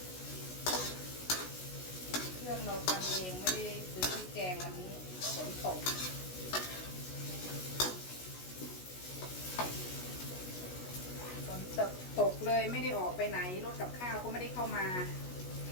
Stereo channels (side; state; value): right; late; 16 ms